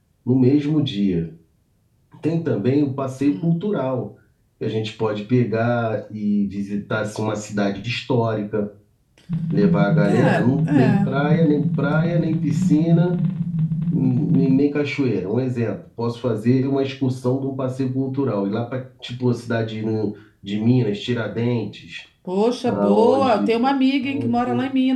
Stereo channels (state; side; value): identical; both; correlation 1.00